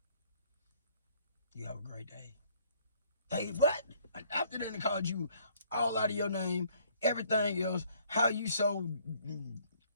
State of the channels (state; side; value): inverted; both; correlation -0.62